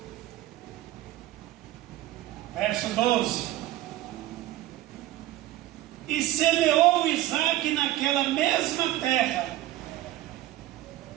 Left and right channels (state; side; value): quieter; left; 15.2 dB